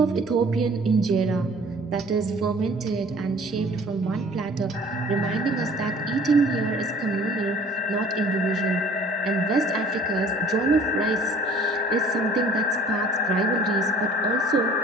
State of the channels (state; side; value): normal; both; correlation 0.50